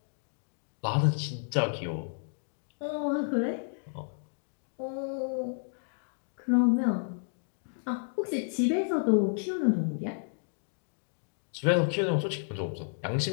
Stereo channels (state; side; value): silent; right; digital silence